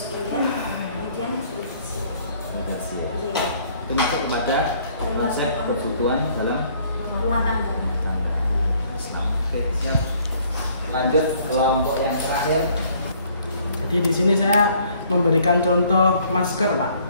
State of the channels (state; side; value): inverted; both; correlation -0.61